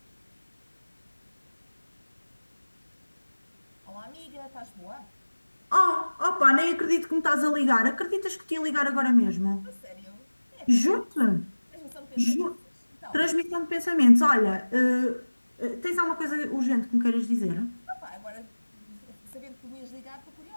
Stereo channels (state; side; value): inverted; both; correlation -1.00